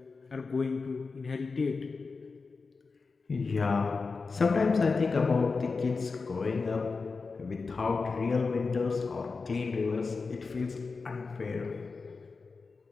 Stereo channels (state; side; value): quieter; right; 4.4 dB